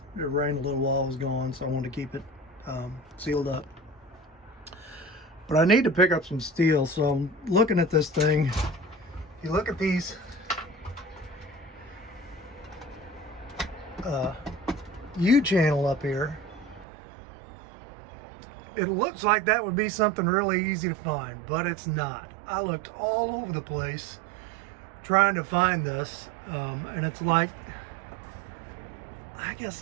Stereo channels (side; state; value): left; drops out; at 16.9 s